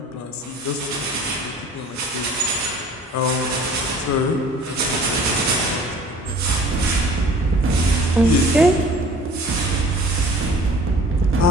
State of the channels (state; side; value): normal; both; correlation 0.48